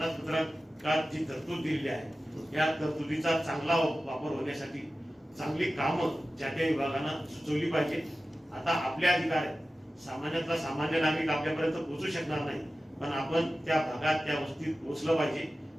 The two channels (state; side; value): normal; both; correlation 0.95